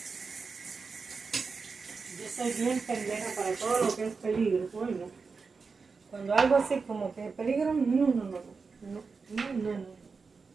Yo soy bien pendeja para todo lo que es peligro, coño. Cuando algo así como que peligro, no.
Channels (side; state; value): left; quieter; 4.8 dB